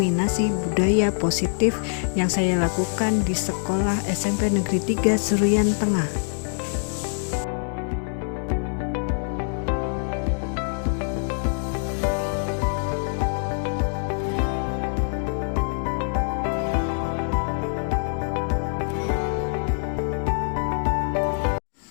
budaya positif yang saya lakukan di sekolah SMP Negeri 3 Seruyan Tengah.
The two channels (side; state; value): right; silent; digital silence